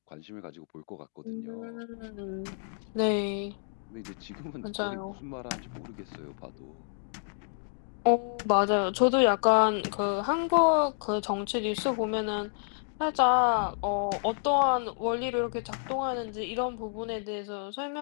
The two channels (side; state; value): right; silent; digital silence